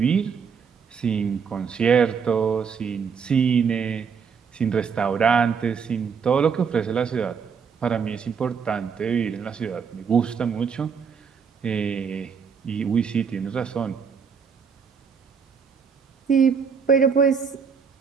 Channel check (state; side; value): quieter; left; 6.3 dB